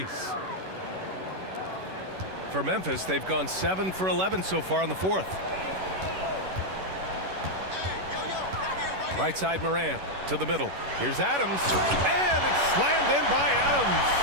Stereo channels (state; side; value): late; left; 11 ms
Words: For Memphis, they've gone 7 for 11 so far in the fourth. Right side Morant to the middle. Here's Adams. And it's slammed in by Adams.